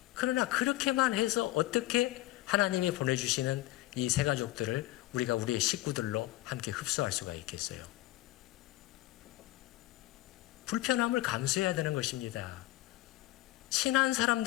그러나 그렇게만 해서 어떻게 하나님이 보내주시는 이 세 가족들을 우리가 우리의 식구들로 함께 흡수할 수가 있겠어요? 불편함을 감수해야 되는 것입니다. 친한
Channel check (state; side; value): quieter; right; 17.2 dB